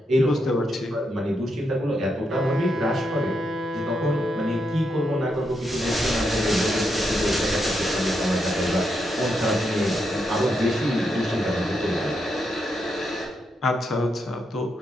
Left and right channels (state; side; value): normal; both; correlation 0.82